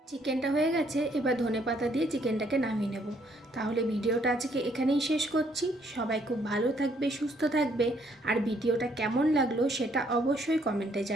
চিকেনটা হয়ে গেছে, এবার ধনেপাতা দিয়ে চিকেনটাকে নামিয়ে নেব। তাহলে ভিডিওটা আজকে এখানেই শেষ করছি। সবাই খুব ভালো থাকবে, সুস্থ থাকবে। আর ভিডিওটা কেমন লাগলো সেটা অবশ্যই কমেন্টে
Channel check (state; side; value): normal; both; correlation 0.68